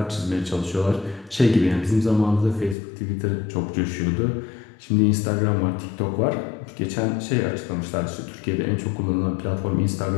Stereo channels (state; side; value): drops out; right; at 2.8 s